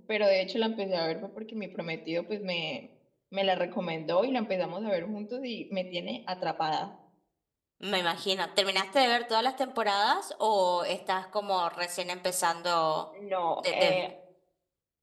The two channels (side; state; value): both; identical; correlation 1.00